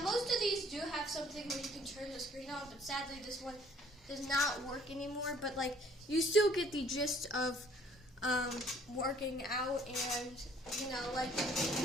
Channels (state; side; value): normal; both; correlation 0.59